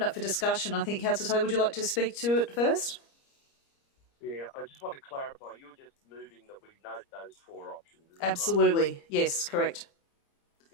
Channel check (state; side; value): late; right; 30 ms